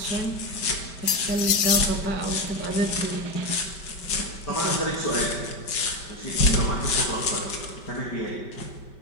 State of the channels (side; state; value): right; late; 5.2 ms